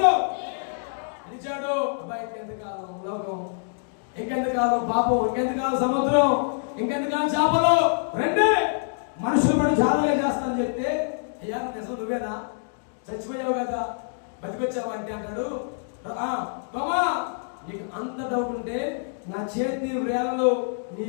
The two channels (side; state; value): right; silent; digital silence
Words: ఇచ్చాడు. అబ్బాయి ఇంకెంతకాలం లోకం, ఇంకెంతకాలం పాపం, ఇంకెంతకాలం సముద్రం, ఇంకెంతకాలం చేపలు, రెండే మనుషులు పడి జాగ్రత్తగా చేస్తానని చెప్తే, అయ్యా నిజం నువ్వేనా, చచ్చిపోయావు కదా, బతికొచ్చావు అంటే అంటాడు, తోమా నీకు అంత డౌట్ ఉంటే నా చేతి వేలలో నీ